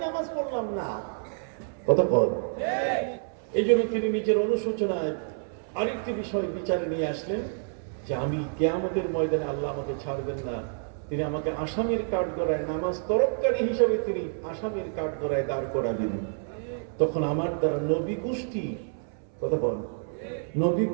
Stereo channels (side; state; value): left; silent; 59 dB below the other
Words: নামাজ পড়লাম না। কথা বল। এই জন্য তিনি নিজের অনুশোচনায় আরেকটি বিষয় বিচারে নিয়ে আসলেন যে আমি কিয়ামতের ময়দানে আল্লাহ আমাকে ছাড়বেন না, তিনি আমাকে আসামির কাঠগড়ায়, নামাজ তরফকারী হিসাবে তিনি আসামির কাঠগড়ায় দাঁড় করাবেন। তখন আমার দ্বারা নবী গোষ্ঠী, কথা বল, নবী